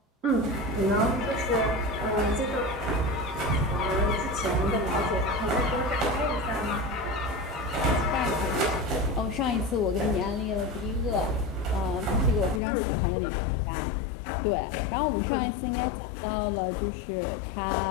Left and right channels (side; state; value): right; drops out; at 12.6 s